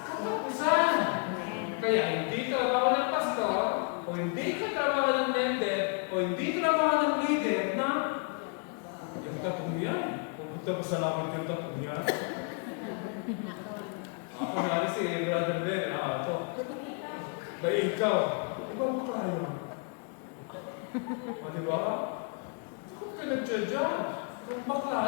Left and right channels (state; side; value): quieter; right; 39.1 dB